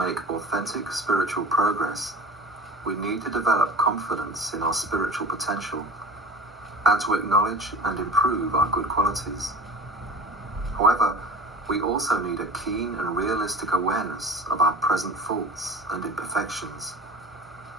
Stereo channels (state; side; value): normal; both; correlation 0.35